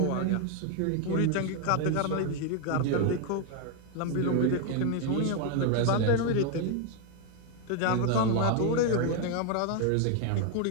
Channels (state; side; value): different; both; correlation 0.01